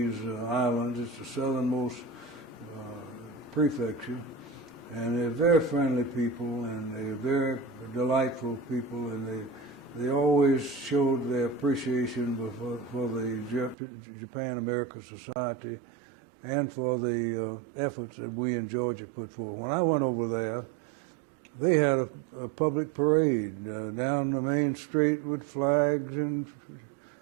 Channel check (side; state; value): left; drops out; at 13.8 s